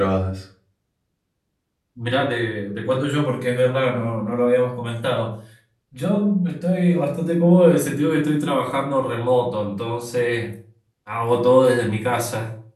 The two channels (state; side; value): identical; both; correlation 1.00